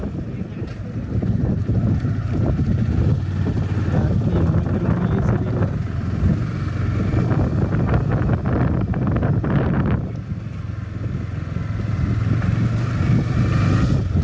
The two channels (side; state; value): both; identical; correlation 1.00